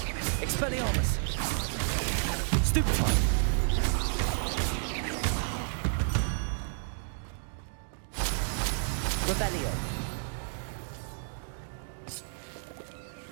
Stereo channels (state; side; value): silent; left; digital silence